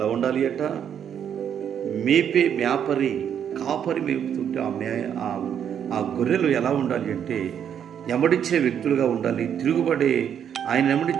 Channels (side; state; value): left; quieter; 8.7 dB